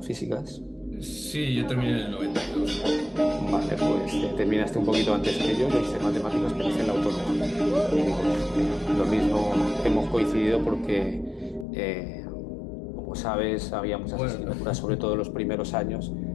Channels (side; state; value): right; drops out; at 11.7 s